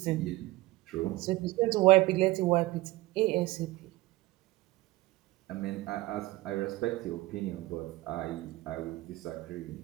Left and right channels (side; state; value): left; quieter; 19.2 dB